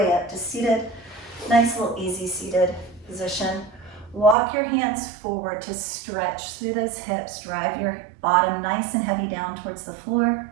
up to seated. Nice little easy seated position. Walk your hands forward to stretch through those hips. Drive your bottom nice and heavy down towards the floor.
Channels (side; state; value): left; drops out; at 4.4 s